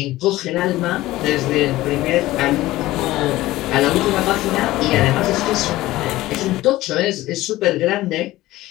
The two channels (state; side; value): quieter; right; 17.0 dB